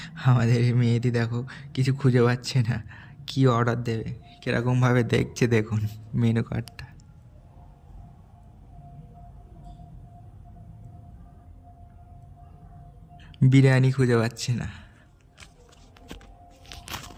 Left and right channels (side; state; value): both; identical; correlation 1.00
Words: আমাদের এই মেয়েটি দেখো কিছু খুঁজে পাচ্ছে না, কি অর্ডার দেবে, কীরকমভাবে দেখছে দেখুন মেনু কার্ডটা। বিরিয়ানি খুঁজে পাচ্ছে না।